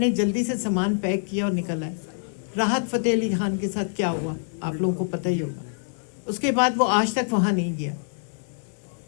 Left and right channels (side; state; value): right; silent; digital silence